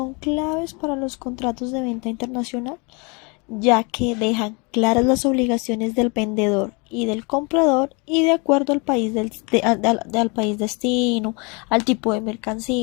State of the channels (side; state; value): right; quieter; 30.8 dB